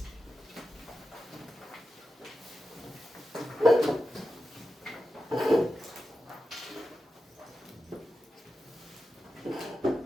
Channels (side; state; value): both; normal; correlation 0.91